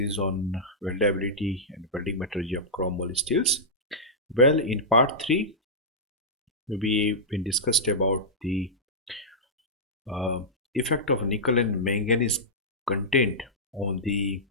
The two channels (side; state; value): both; normal; correlation -0.12